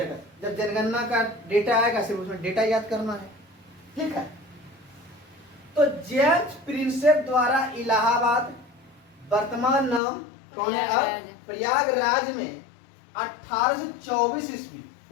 जब जनगणना का डेटा आएगा सिर्फ उसमें डेटा याद करना है, ठीक है। तो जेम्स प्रिंसेप द्वारा इलाहाबाद, वर्तमान नाम कौन है अब? प्रयागराज में 1824 ईस्वी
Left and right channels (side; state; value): right; drops out; at 10.0 s